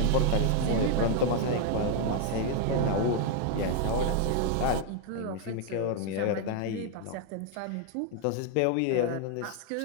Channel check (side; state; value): both; different; correlation 0.00